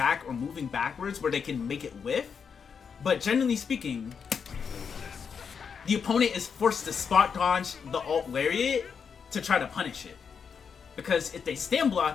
or moving backwards where they can make it whiff. But generally speaking, the opponent is forced to spot dodge the alt lariat to try to punish it. Because if they stand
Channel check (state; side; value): quieter; right; 6.4 dB